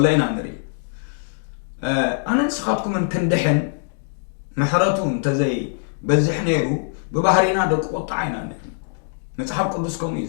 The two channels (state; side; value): silent; right; digital silence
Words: ኢና ንርኢ ኣነ ንስኻትኩምን ክንድሕን ምሕረቱ እንተዘይ በዝሕ ነይሩ ብባህሪና ደቂ ቁጣዕ ኢና ንርኢ መፅሓፍ ቅዱስ ከምኡ እዩ